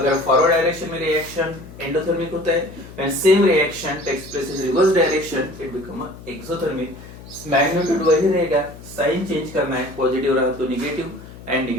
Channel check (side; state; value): left; noise; hum, 17 dB below the sound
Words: फॉरवर्ड डायरेक्शन में रिएक्शन एंडोथर्मिक होता है, when same reaction takes place in reverse direction it become exothermic. Magnitude वही रहेगा, साइन चेंज करना है, पॉजिटिव रहा तो नेगेटिव एंड